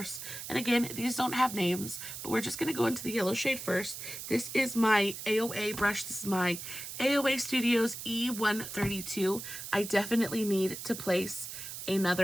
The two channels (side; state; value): right; noise; hiss, 9 dB below the sound